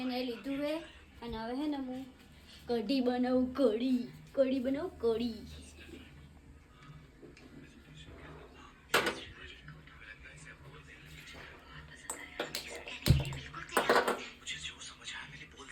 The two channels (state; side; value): identical; both; correlation 1.00